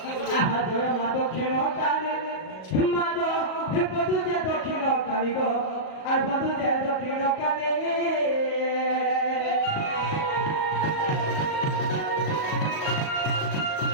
দক্ষিণ কালী মাদ বধু যে দক্ষিণ কালী গো আর বধু যে দক্ষিণ কালী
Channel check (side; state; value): right; late; 38 ms